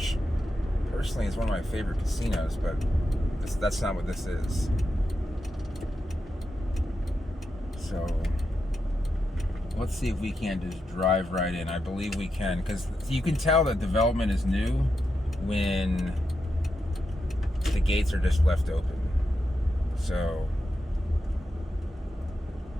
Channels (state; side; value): normal; both; correlation 0.87